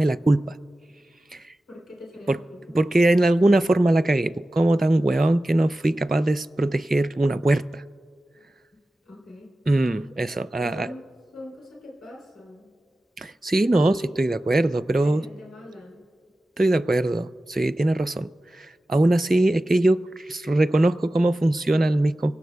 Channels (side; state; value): both; normal; correlation 0.95